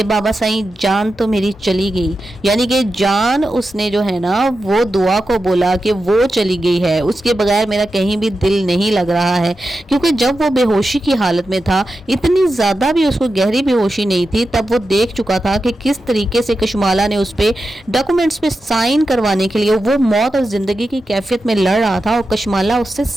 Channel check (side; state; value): both; normal; correlation 0.90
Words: बाबा साई जान तो मेरी चली गई, यानी कि जान उसने जो है ना वो दुआ को बोला कि वो चली गई है, उसके बगैर मेरा कहीं भी दिल नहीं लग रहा है, क्योंकि जब वो बेहोशी की हालत में था, इतनी ज़्यादा भी उसको गहरी बेहोशी नहीं थी, तब वो देख चुका था कि किस तरीके से कशमाला ने उस पर डॉक्यूमेंट्स पे साइन करवाने के लिए वो मौत और ज़िंदगी की कैफियत में लड़ रहा था, और कशमाला उससे